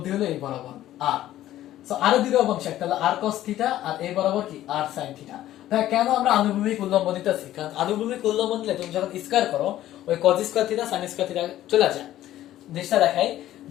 হলো এই বরাবর আর। সো আর দুটো অংশ, একটা হলো আর cos থিটা আর এই বরাবর কি? আর sin থিটা। তাহলে কেন আমরা আনুভূমিক উল্লম্ব নিতেছি? কারণ আনুভূমিক উল্লম্ব নিলে তুমি যখন স্কয়ার করো ওই cos square theta sin square theta চলে যায়। জিনিসটা দেখাই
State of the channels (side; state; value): right; quieter; 13.5 dB